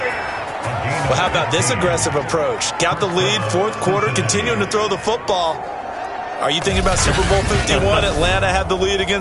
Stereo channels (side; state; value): both; identical; correlation 1.00